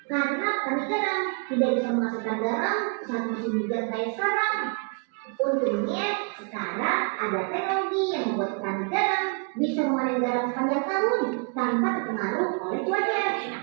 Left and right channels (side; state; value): left; quieter; 37.0 dB